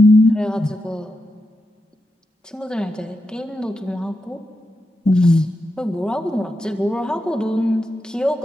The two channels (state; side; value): normal; both; correlation 0.87